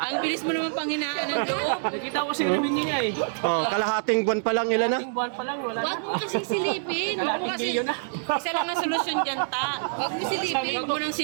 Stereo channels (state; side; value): silent; left; digital silence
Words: Ang bilis mo naman panghinaan ng loob. Nakita ko si revenue niya eh. Oh, kalahating buwan pa lang ilan na. Ating buwan pa lang, wala Huwag na. mo kasing silipin. Huwag mo Kalating kasi. milyon na. Isa lang ang solusyon dyan, Ta. Huwag mo silipin. Huwag mo nang